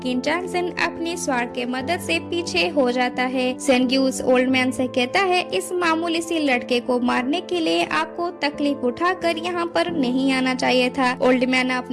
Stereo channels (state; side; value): identical; both; correlation 1.00